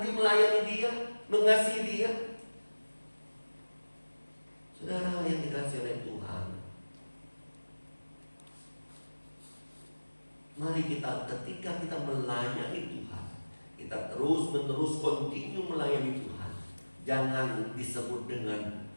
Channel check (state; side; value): inverted; both; correlation -1.00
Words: melayani dia, mengasihi dia? Saudara yang dikasihi oleh Tuhan, mari kita, ketika kita melayani Tuhan, kita terus-menerus continue melayani Tuhan. Jangan disebut dengan